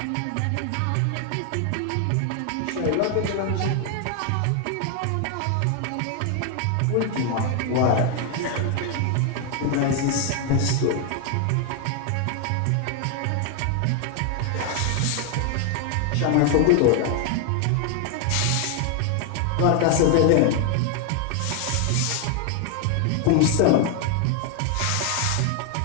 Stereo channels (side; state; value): both; different; correlation 0.00